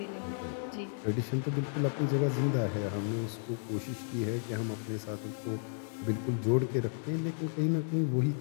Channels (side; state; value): right; silent; digital silence